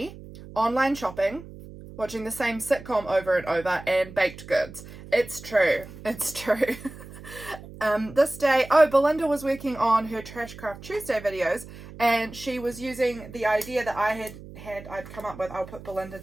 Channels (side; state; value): right; noise; hum, 16 dB below the sound